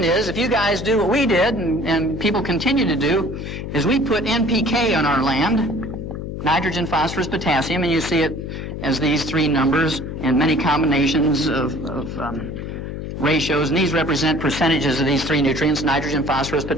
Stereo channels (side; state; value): left; noise; hum, 7 dB below the sound